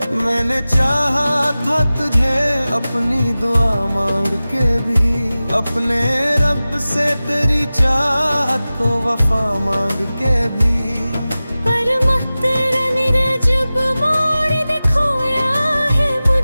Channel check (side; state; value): both; inverted; correlation -0.97